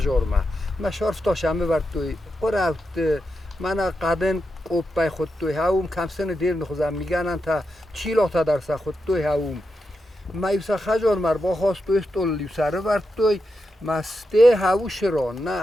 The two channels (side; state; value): both; normal; correlation 0.87